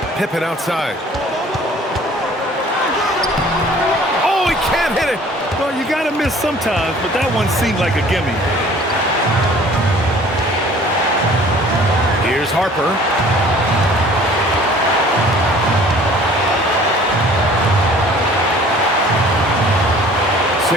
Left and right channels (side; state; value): both; normal; correlation 0.51